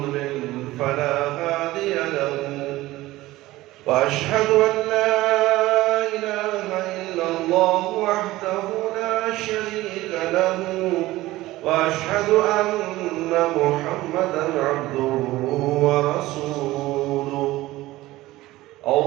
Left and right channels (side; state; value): left; quieter; 17.6 dB